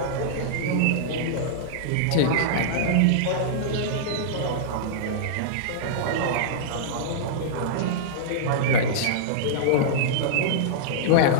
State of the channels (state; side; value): different; both; correlation -0.02